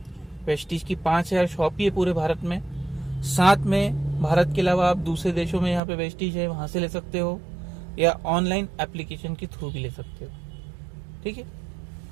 वेस्टीज की 5000 शॉप ही है पूरे भारत में। साथ में भारत के अलावा आप दूसरे देशों में यहाँ पे वेस्टीज है, वहां से ले सकते हो या ऑनलाइन एप्लीकेशन के थ्रू भी ले सकते हो। ठीक है।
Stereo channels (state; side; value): drops out; left; at 5.8 s